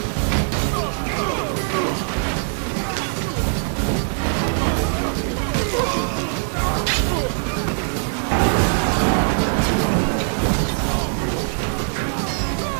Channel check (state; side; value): silent; left; 65 dB below the other